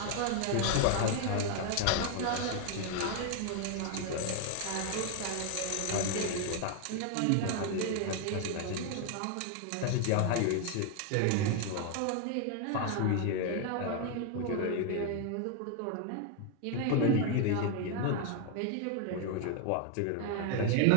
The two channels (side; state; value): both; different; correlation 0.00